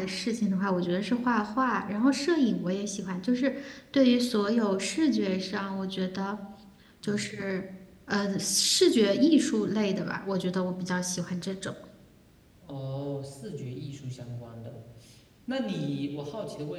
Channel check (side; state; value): both; identical; correlation 1.00